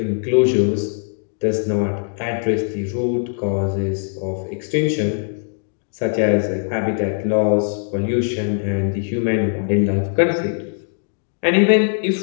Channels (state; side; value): silent; right; 64 dB below the other